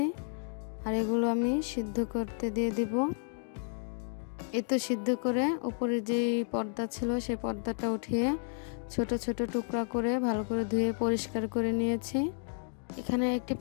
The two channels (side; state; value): right; silent; digital silence